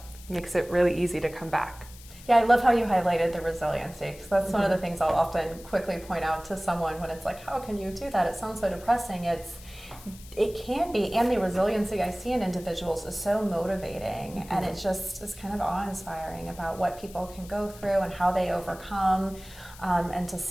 makes it really easy to come back. Yeah, I love how you highlighted the resiliency, because that's one of the things I'll often quickly point out to someone when it's like, how can you do that? It sounds so depressing. It can be, and the resiliency I see in individuals is so motivating, and it just is kind of awe-inspiring about what people can go through and how they overcome, and to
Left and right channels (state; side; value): noise; left; hiss, 20 dB below the sound